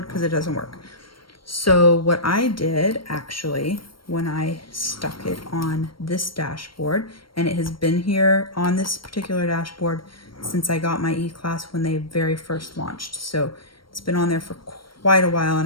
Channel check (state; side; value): late; right; 0.73 ms